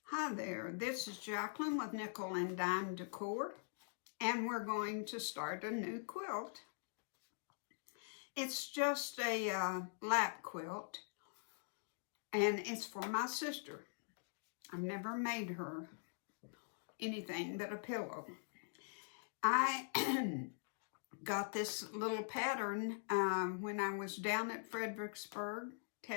Hi there, this is Jacqueline with Nickel and Dime Decor, and we're going to start a new quilt. It's just a lap quilt, and it's for my sister. I've never made her anything but a pillow. I got this little pattern when I was down at Fredericksburg,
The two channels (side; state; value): right; silent; digital silence